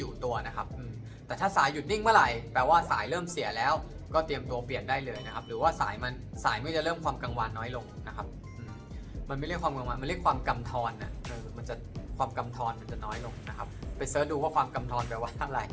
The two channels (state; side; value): identical; both; correlation 1.00